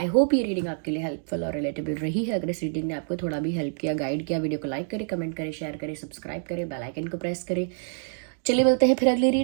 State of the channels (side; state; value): left; silent; 60 dB below the other